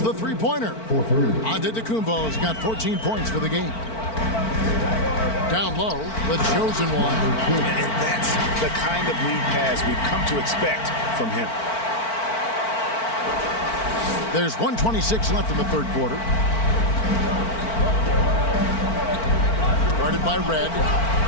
the three-pointer. Antetokounmpo's got 14 points for the game. Down low, the chosen one. And that's the kind of lead pass we've come to expect from him. There's 1:26 left in the third quarter. Guarded by Red.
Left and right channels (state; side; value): late; right; 4.5 ms